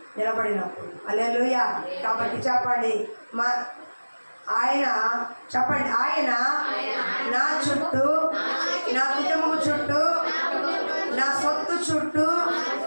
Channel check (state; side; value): inverted; both; correlation -1.00